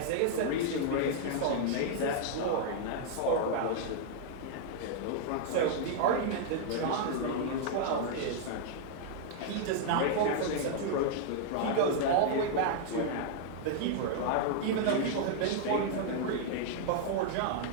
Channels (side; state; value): both; different; correlation -0.01